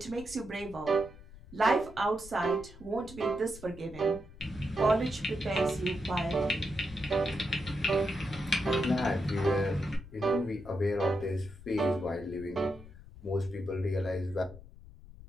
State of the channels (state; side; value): noise; left; rumble, 18 dB below the sound